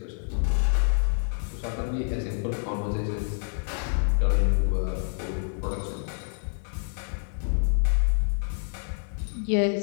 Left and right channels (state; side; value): silent; right; 57 dB below the other